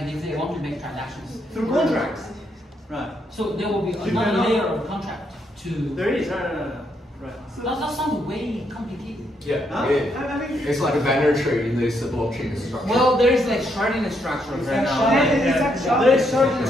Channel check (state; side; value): normal; both; correlation 0.76